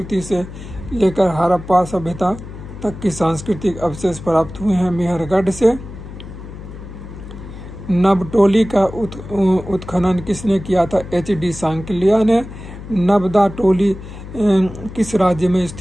से लेकर हड़प्पा सभ्यता तक की सांस्कृतिक अवशेष प्राप्त हुए हैं? मेहरगढ़ से। नबटोली का उत्खनन किसने किया था? HD सांकलिया ने। नबदा टोली किस राज्य में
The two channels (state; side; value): noise; left; hum, 13 dB below the sound